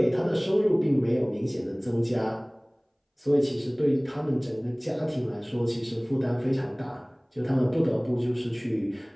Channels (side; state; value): both; identical; correlation 1.00